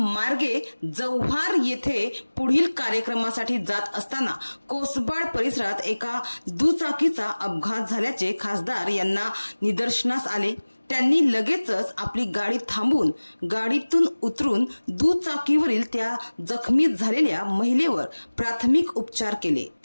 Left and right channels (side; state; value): both; inverted; correlation -1.00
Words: जव्हार येथे पुढील कार्यक्रमासाठी जात असताना कोसबाड परिसरात एका दुचाकीचा अपघात झाल्याचे खासदार यांना निदर्शनास आले। त्यांनी लगेचच आपली गाडी थांबवून गाडीतून उतरून दुचाकीवरील त्या जखमी झालेल्या महिलेवर प्राथमिक उपचार केले।